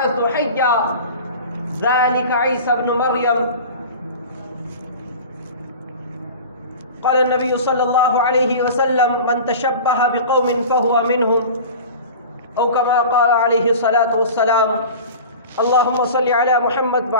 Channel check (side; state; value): both; inverted; correlation -0.36